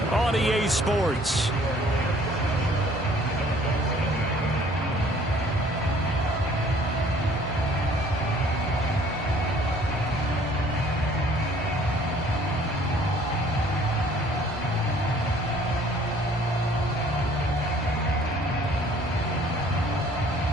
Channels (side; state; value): both; normal; correlation 0.56